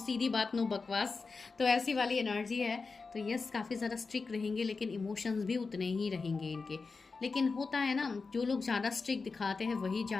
बात नो बकवास, तो ऐसी वाली एनर्जी है। तो यस, काफ़ी ज़्यादा स्ट्रिक्ट रहेंगे, लेकिन इमोशंस भी उतने ही रहेंगे इनके। लेकिन होता है ना, जो लोग ज़्यादा स्ट्रिक्ट दिखाते हैं वही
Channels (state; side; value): quieter; right; 4.4 dB